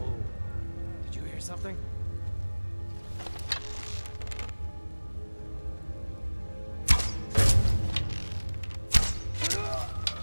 did you hear something?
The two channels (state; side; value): inverted; both; correlation -1.00